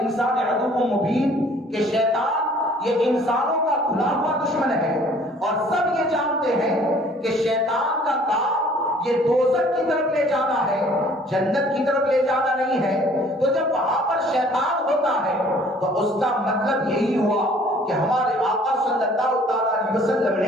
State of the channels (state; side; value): normal; both; correlation 0.55